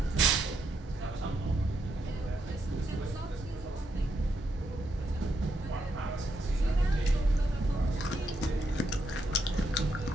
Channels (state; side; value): normal; both; correlation 0.79